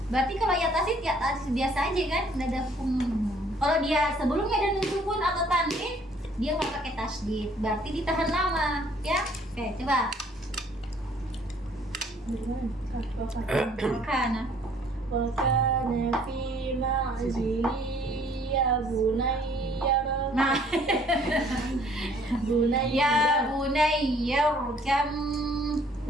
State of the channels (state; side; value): normal; both; correlation 0.60